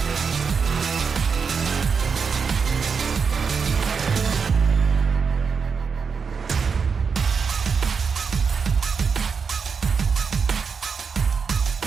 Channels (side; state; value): left; quieter; 5.7 dB